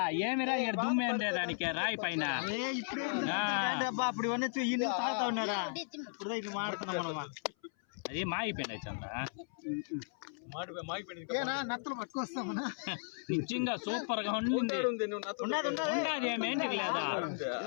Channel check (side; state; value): right; silent; 54 dB below the other